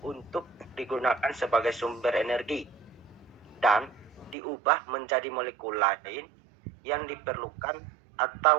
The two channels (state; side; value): drops out; left; at 4.4 s